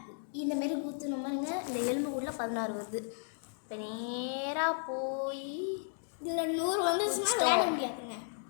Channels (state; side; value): silent; right; digital silence